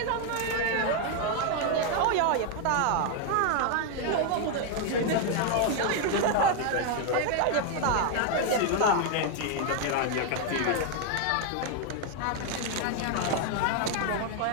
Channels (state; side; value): different; both; correlation 0.00